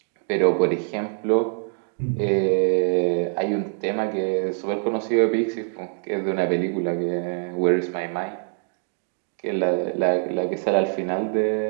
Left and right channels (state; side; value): silent; left; digital silence